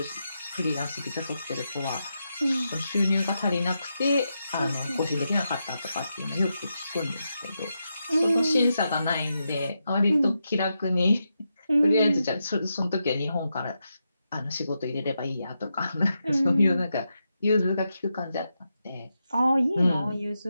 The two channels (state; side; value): inverted; both; correlation -0.86